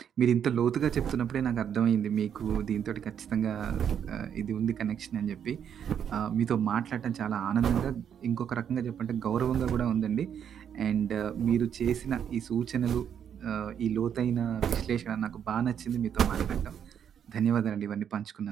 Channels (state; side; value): quieter; left; 8.6 dB